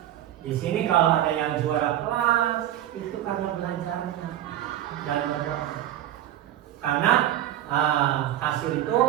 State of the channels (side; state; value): left; quieter; 12.4 dB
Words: di sini kalau ada yang juara kelas itu karena belajarnya dan berdoa. Karena hasil itu